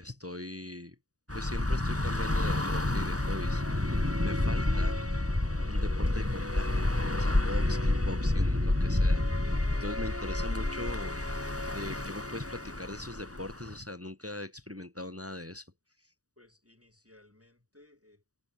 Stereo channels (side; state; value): left; late; 0.67 ms